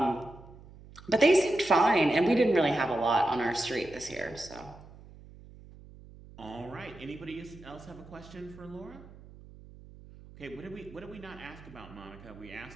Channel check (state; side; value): noise; right; hum, 20 dB below the sound